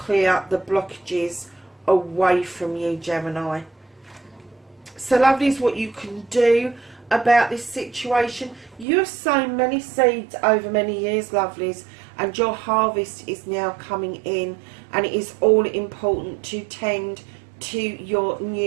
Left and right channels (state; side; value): drops out; left; at 8.8 s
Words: the blockages away from you, Gemini. So lovelies, what you can do about this situation, you have sown many seeds over many years, lovelies, and your harvest is now coming in, and it is all important to tend to your